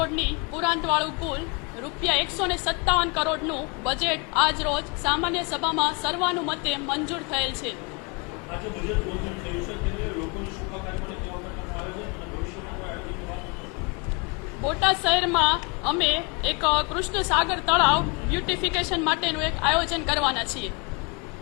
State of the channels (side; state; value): right; quieter; 31.6 dB